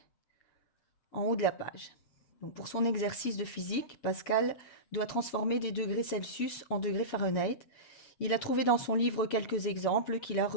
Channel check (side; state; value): right; late; 7.2 ms